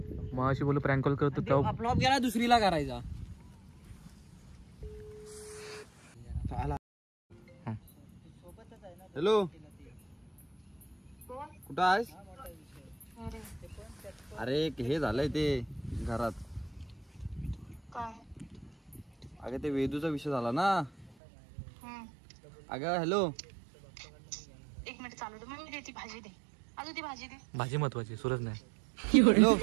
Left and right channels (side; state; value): left; drops out; at 21.2 s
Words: मग अशी बोलू प्रँक कॉल करतो तेव्हा फ्लॉप गेला दुसरीला करायचा. हॅलो, कुठं आहेस? अरे हे झालंय ते घरात. अगं ते वेदूचा विषय झाला ना. अगं हॅलो, एक मिनिट चालू दे. मग मी देते भाजी दे. अजून ती भाजी दे. भाजी महत्वाची, सूरज नाही. हॅलो.